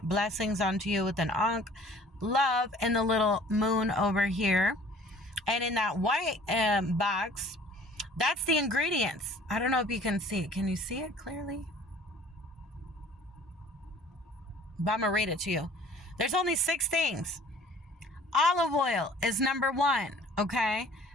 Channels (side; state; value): both; normal; correlation 0.51